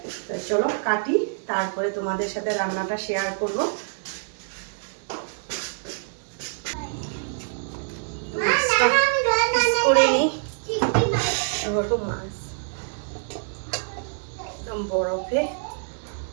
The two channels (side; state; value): left; silent; digital silence